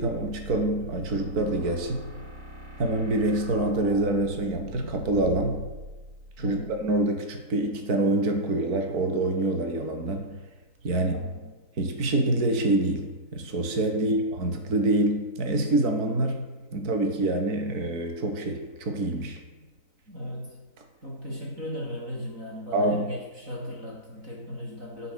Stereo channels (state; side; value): late; left; 3.9 ms